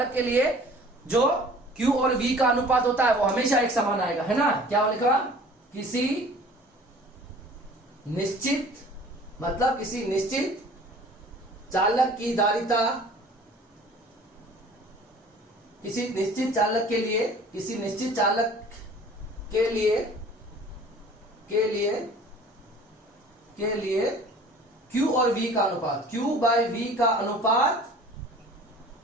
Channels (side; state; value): both; normal; correlation 0.47